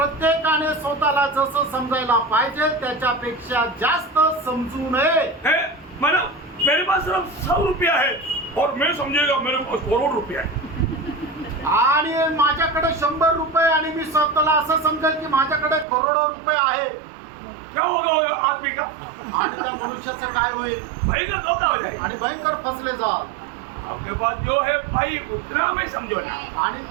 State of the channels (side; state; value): left; drops out; at 15.9 s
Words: स्वतःला जसं समजायला पाहिजे त्याच्यापेक्षा जास्त समजू नये. है मानो मेरे पास सिर्फ 100 रुपया है और मैं समझेगा मेरे पास करोड़ रुपया है। आणि माझ्याकडे 100 रुपये आणि मी स्वतःला असं समजेल की माझ्याकडे करोडो रुपये आहे. क्या होगा आदमी का? आणि त्या मनुष्याचं काय होईल? भयंकर धोखा हो जाएगा। आणि भयंकर फसले जाल. आपके पास जो है भाई उतना में समझो ना, आणि